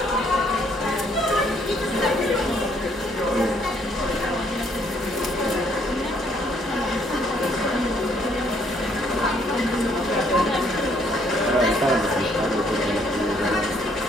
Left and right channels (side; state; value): both; normal; correlation 0.67